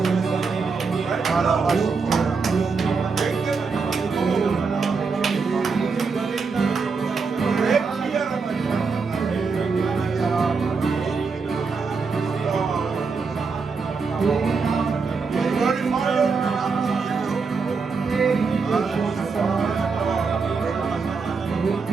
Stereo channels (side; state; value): left; quieter; 4.8 dB